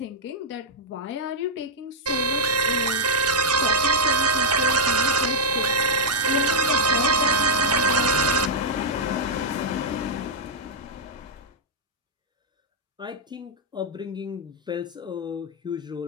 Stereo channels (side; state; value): both; normal; correlation -0.04